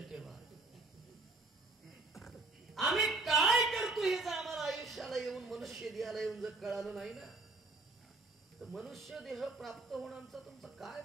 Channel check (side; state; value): left; quieter; 3.3 dB